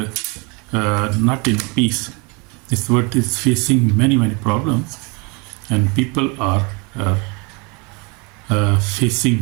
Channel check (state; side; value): quieter; left; 30.4 dB